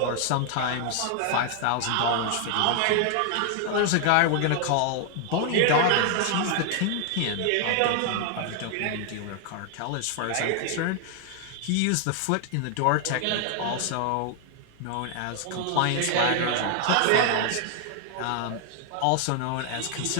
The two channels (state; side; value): different; both; correlation 0.00